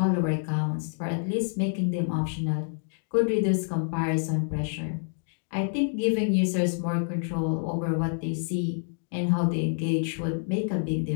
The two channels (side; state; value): right; silent; digital silence